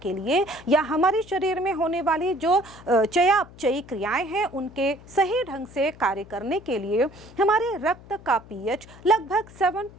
के लिए या हमारे शरीर में होने वाली जो चयापचयी क्रियाएं हैं उनके सही ढंग से कार्य करने के लिए हमारे रक्त का pH लगभग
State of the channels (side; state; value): left; noise; hum, 20 dB below the sound